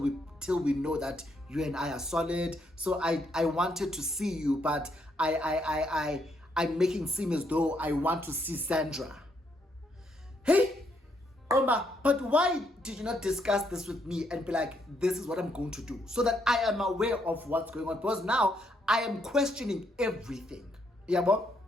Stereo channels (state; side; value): normal; both; correlation 0.74